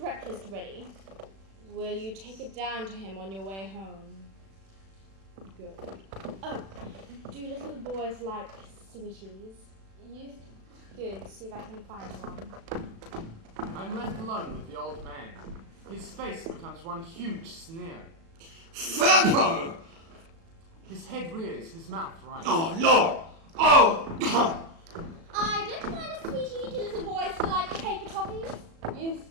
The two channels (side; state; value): left; late; 36 ms